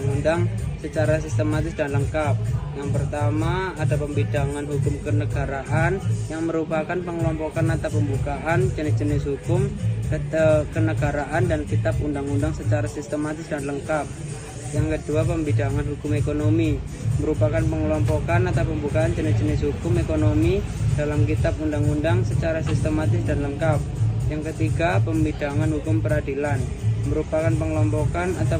secara sistematis dan lengkap. Yang pertama, ada pembedangan hukum kenegaraan yang merupakan pengelompokan atau pembukaan jenis-jenis hukum kenegaraan dan kitab undang-undang secara sistematis dan lengkap. Yang kedua, pembedangan hukum ekonomi merupakan pengelompokan atau pembukaan jenis-jenis hukum ekonomi dalam kitab undang-undang secara sistematis dan lengkap. Yang ketiga, pembedangan hukum peradilan merupakan pengelompokan atau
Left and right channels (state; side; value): identical; both; correlation 1.00